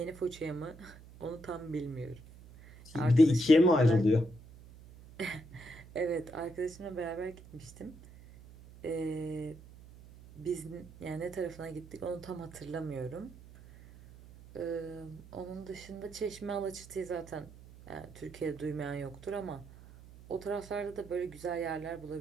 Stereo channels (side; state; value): right; noise; hum, 19 dB below the sound